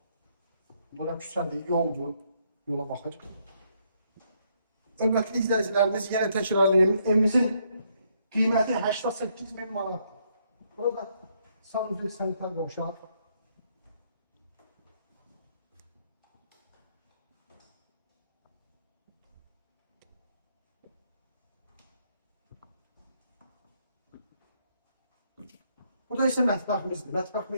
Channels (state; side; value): inverted; both; correlation -0.73